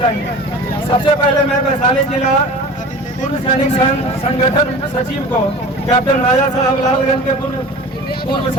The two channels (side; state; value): both; normal; correlation 0.38